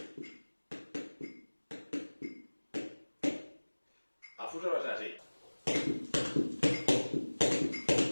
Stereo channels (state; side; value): inverted; both; correlation -1.00